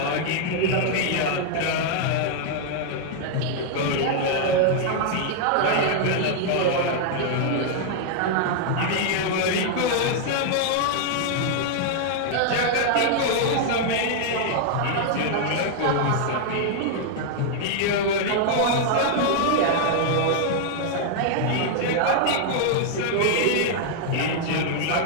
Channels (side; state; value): both; different; correlation -0.01